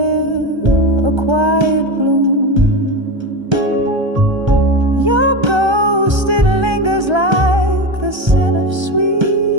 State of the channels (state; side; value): late; left; 1.3 ms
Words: a quiet gloom. Your ghost, it lingers like the scent of sweet